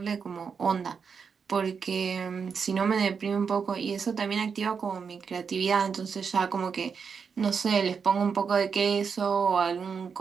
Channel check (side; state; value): left; quieter; 6.0 dB